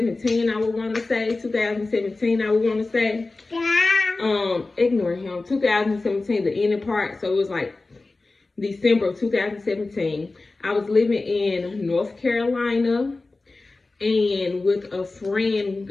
I would want to say. 2017, I would want to say. Ignore him. 2017, the ending part. So it was like December of 2017. I was living in North Carolina and with a friend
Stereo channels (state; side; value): quieter; right; 3.4 dB